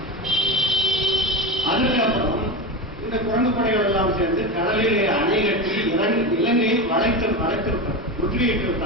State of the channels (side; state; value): both; normal; correlation 0.22